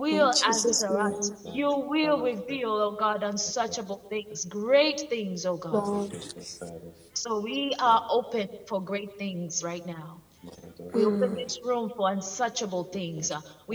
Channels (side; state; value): both; identical; correlation 1.00